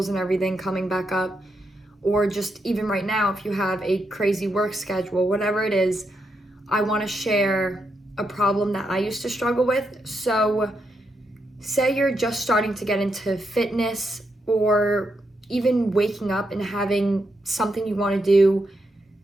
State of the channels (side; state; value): both; normal; correlation 0.82